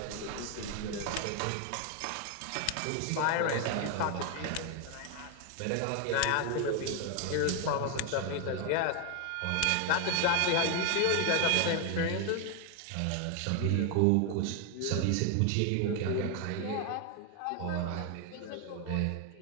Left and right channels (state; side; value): different; both; correlation 0.01